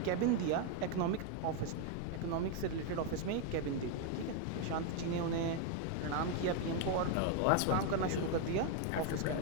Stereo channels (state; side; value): different; both; correlation 0.01